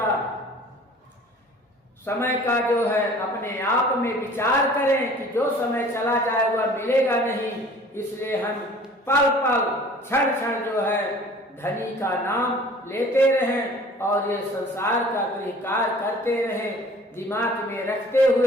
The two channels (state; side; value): normal; both; correlation 0.48